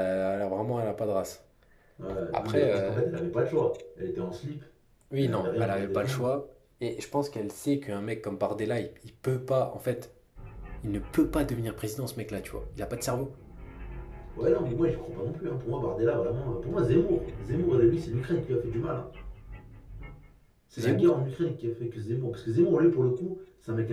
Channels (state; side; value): identical; both; correlation 1.00